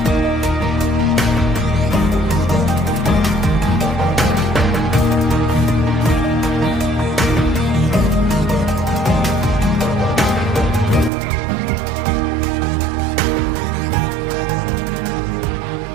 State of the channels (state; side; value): drops out; left; at 11.1 s